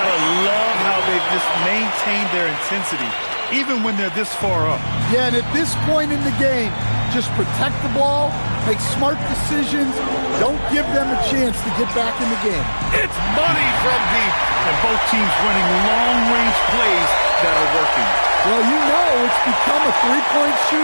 love how they've just maintained their intensity, even when they're this far up. Yeah, and at this point in the game, just protect the ball, make smart decisions, don't give them a chance to get back in the game. It's money from deep. And both teams running long-range plays that are working. Well, you know it's become a three-point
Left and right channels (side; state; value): both; inverted; correlation -1.00